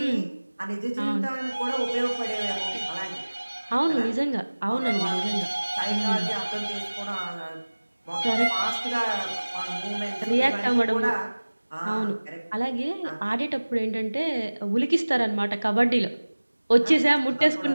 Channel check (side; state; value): both; inverted; correlation -1.00